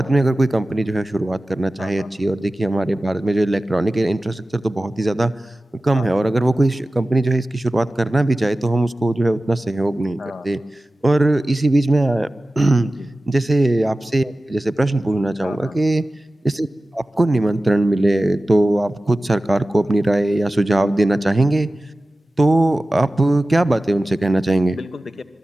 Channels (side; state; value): both; normal; correlation 0.96